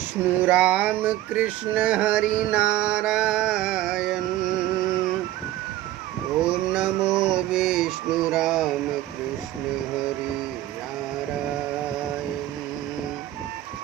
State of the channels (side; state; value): left; quieter; 14.7 dB